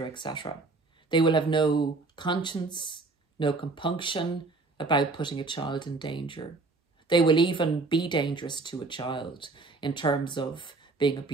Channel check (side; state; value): left; quieter; 3.6 dB